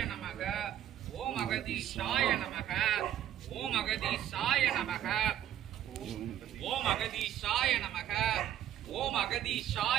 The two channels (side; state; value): left; quieter; 11.3 dB